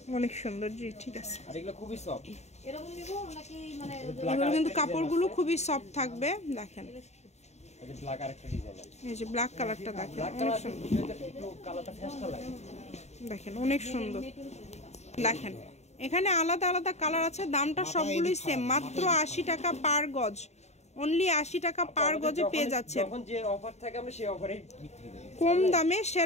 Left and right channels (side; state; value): right; late; 0.32 ms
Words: অনেক সুন্দর, জি ঠিক আছে। এগুলো কিন্তু কাপড়গুলো খুবই সফট থাকবে। দেখেন এই যে ব্ল্যাক কালারটা দেখেন, অনেক সুন্দর। দেখেন অনেক সুন্দর। দেখেন এখানে আলাদা আলাদা কালার আছে, দামটা সবগুলোই সেম, মাত্র 80 টাকা পার গজ। অনলি 80 টাকা পার গজে পেয়ে যাচ্ছে। কম দামে